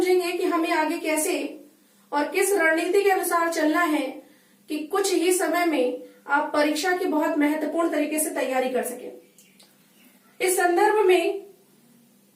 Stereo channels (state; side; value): identical; both; correlation 1.00